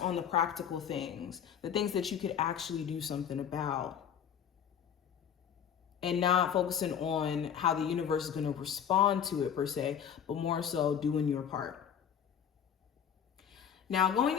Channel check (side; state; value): right; quieter; 8.5 dB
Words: the practical things, the things that you could actually do something about, and not focusing on how the universe is going to respond to it per se, but more so doing your part. Now, going